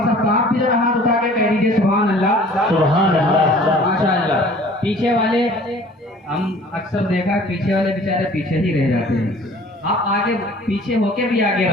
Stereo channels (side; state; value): both; normal; correlation 0.49